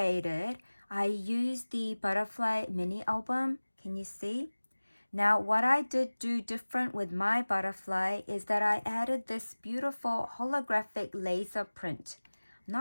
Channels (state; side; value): inverted; both; correlation -1.00